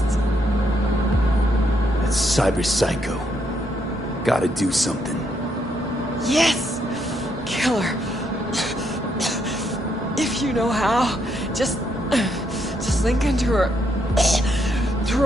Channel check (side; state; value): both; normal; correlation 0.76